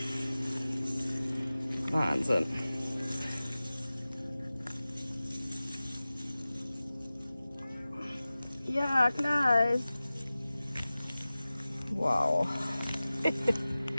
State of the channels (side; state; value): both; inverted; correlation -0.97